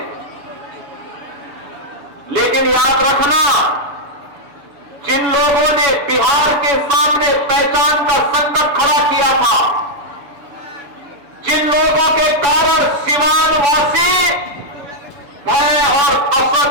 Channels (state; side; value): late; left; 7.0 ms